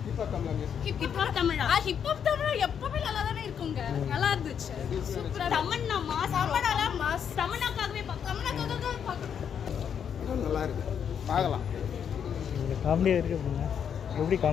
ஹிப்ஹாப் தமிழா ஹிப்ஹாப் தமிழா எப்பவுமே நல்லா தானே இருக்குங்க. நல்லா இருந்துச்சு. சூப்பரா தமன்னா மாஸ் தமன்னாக்காகவே நல்லா இருக்கு. பார்க்கலாம். காமெடியா இருக்கு அப்படின்னா எப்படி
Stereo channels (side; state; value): right; quieter; 8.0 dB